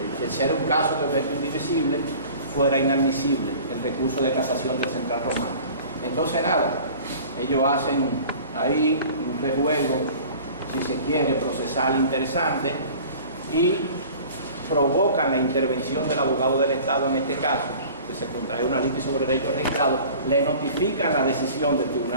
ser un caso de objeto indivisible, fuera inadmisible el recurso de casación del Central Romano. Entonces nada, ellos hacen ahí un rejuego, si se quiere, procesal interesante, y provocan la intervención del abogado del Estado en este caso, que se contrae una litis sobre derechos registrados, le notifican la decisión del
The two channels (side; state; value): both; inverted; correlation -0.44